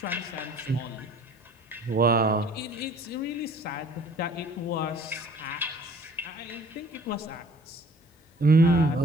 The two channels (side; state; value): both; normal; correlation 0.53